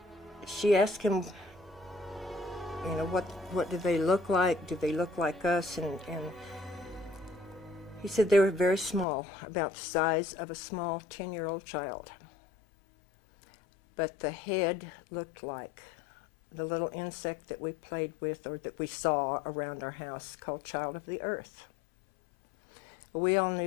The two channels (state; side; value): drops out; right; at 9.1 s